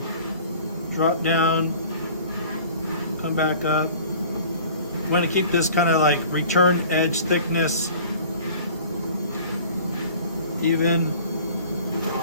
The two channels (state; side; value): inverted; both; correlation -0.47